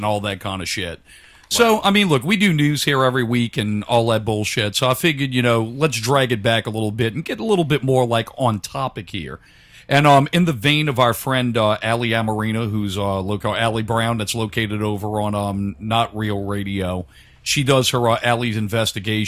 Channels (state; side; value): identical; both; correlation 1.00